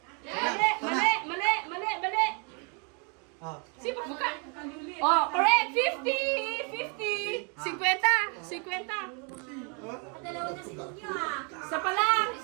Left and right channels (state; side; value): quieter; left; 36.1 dB